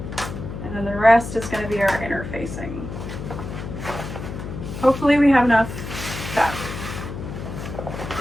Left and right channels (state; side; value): noise; left; hum, 8 dB below the sound